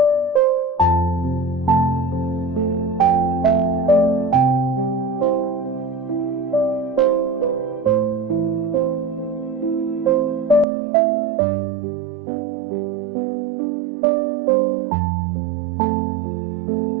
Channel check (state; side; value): drops out; left; at 10.7 s